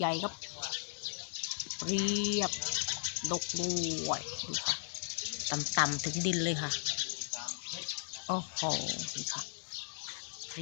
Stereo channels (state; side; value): silent; right; 54 dB below the other